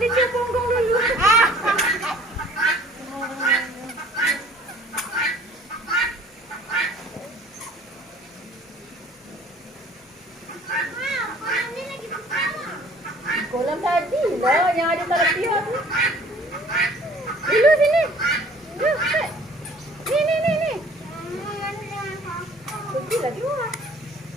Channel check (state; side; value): normal; both; correlation 0.52